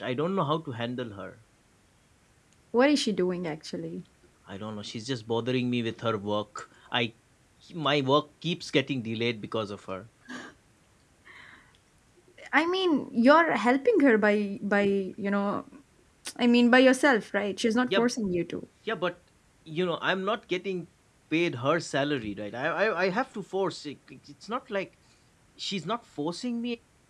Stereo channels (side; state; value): both; identical; correlation 1.00